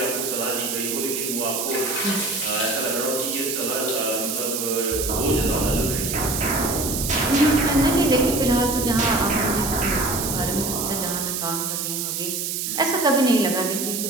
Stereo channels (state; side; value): noise; right; hiss, 2 dB below the sound